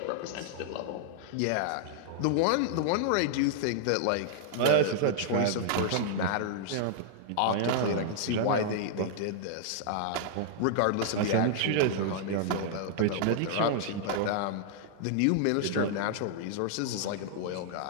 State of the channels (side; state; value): both; different; correlation -0.01